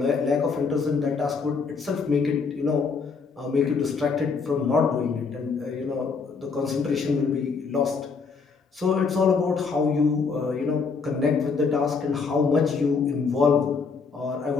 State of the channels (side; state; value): right; quieter; 5.1 dB